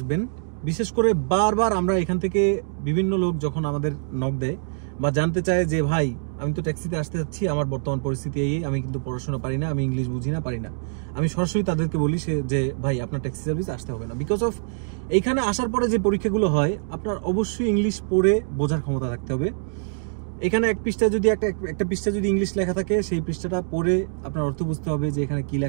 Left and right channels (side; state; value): left; silent; digital silence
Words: বিশেষ করে বারবার আমরা এখান থেকে বিভিন্ন লোক যখন আমাদের নক দেয় বা জানতে চায় যে ভাই আমি তো ট্যাক্সিতে আসতে যাচ্ছি, আমার বর্তমান পরিস্থিতি এই, আমি কিন্তু পড়াশোনা পারি না, আমি ইংলিশ বুঝি না, পারি না, আমি সরাসরি তাদেরকে বলি যে ভাই আপনার ট্যাক্সি সার্ভিস আসতে হবে না। বিকজ অফ এইখানে আসার পরে যে পরীক্ষাগুলো হয় আপনার অবশ্যই ইংলিশ পড়ে বোঝার ক্ষমতা রাখতে হবে। এখানে একটা পৃষ্ঠা যদি ইংলিশ লেখা থাকে, সেই পৃষ্ঠাটা পড়ে আপনার অর্থ বুঝতে হবে যে এখানে কি